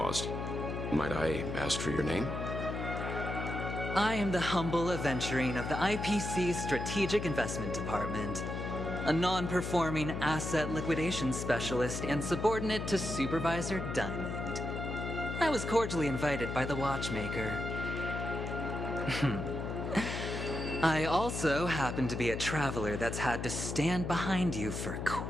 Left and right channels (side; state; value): left; noise; hum, 4 dB below the sound